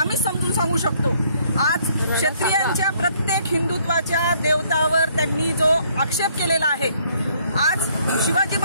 समजून सांगू शकतो. आज क्षत्रियांच्या प्रत्येक हिंदुत्वाच्या देवतावर त्यांनी जो आक्षेप केलेला आहे, आज शिवाजी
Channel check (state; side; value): inverted; both; correlation -0.65